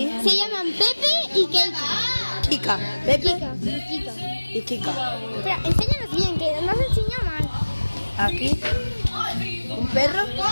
Se llaman Pepe y Keika. Kika. Pepe Kika. y Kika. Espera, enséñanos bien, que no se enseña mal. Aquí un perro.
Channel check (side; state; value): both; inverted; correlation -1.00